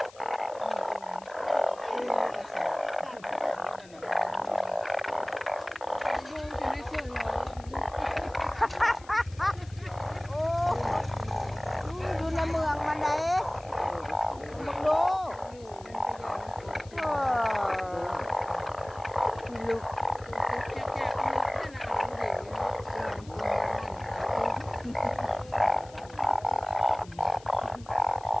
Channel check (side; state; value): left; noise; hiss, 23 dB below the sound